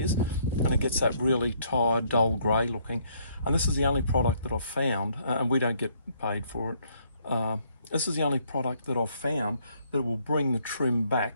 and it gets that really tired, dull grey looking. And this is the only product that I've found, and we don't get paid for it. This is the only product that I've found that will bring the trim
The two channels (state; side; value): inverted; both; correlation -0.67